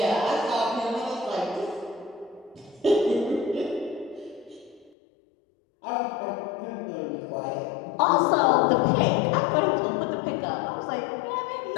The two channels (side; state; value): right; drops out; at 4.9 s